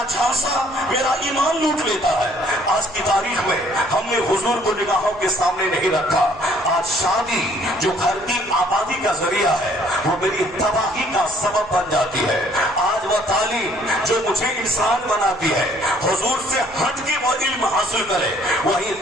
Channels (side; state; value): right; noise; rumble, 23 dB below the sound